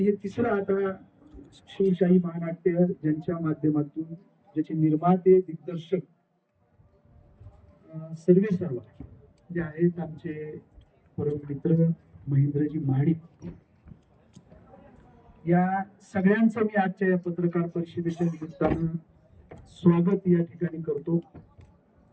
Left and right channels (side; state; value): both; identical; correlation 1.00